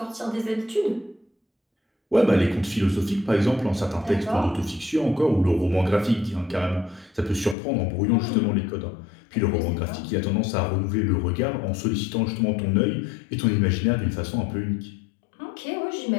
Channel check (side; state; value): right; drops out; at 7.6 s